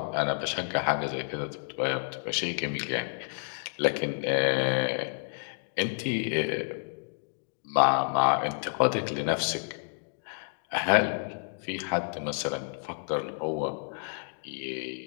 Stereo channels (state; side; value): silent; right; digital silence